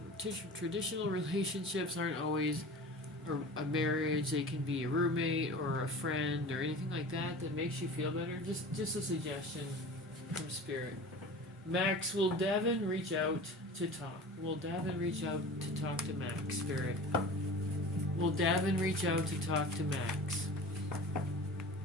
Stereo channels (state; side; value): normal; both; correlation 0.37